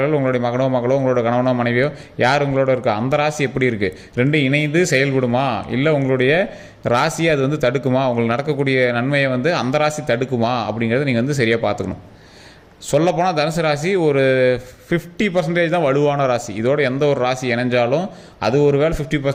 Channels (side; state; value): both; identical; correlation 1.00